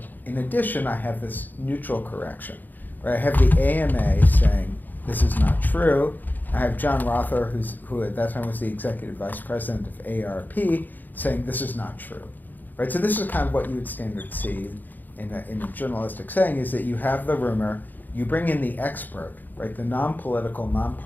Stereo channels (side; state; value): right; late; 0.086 ms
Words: in addition, I have this neutral correction. Right? I have the AMA saying this is not true. I have John Rother, who at that time was the executive vice president of AARP, saying this is not true. Right? So this is kind of what you would standard see in a journalistic setting, is that you have the rumor, you bring in the expert, right, the non-political,